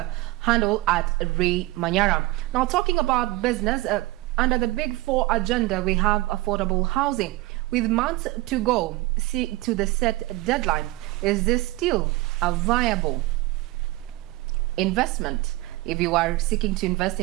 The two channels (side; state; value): left; quieter; 19.9 dB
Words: handle at Ray Manyara. Now, talking about business, under the Big Four agenda, we have affordable housing. With months to go to the set deadline, is this still a viable investment? If you are seeking to invest